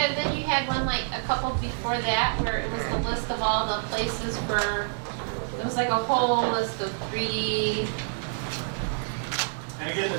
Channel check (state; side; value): silent; left; digital silence